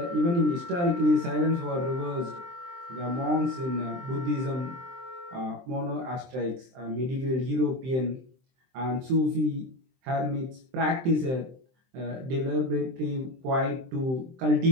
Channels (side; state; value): left; late; 23 ms